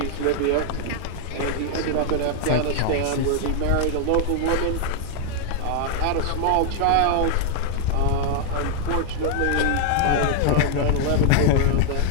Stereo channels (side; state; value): both; different; correlation 0.00